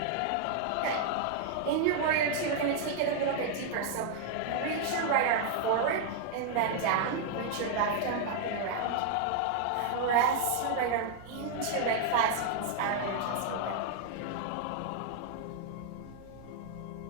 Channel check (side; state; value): both; different; correlation 0.00